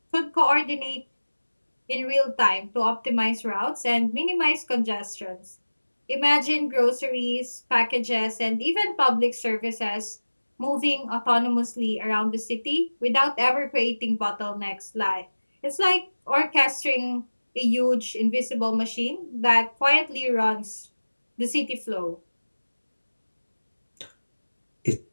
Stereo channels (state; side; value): inverted; both; correlation -1.00